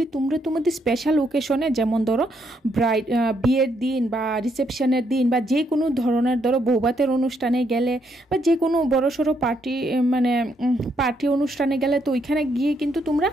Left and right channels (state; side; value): normal; both; correlation 0.75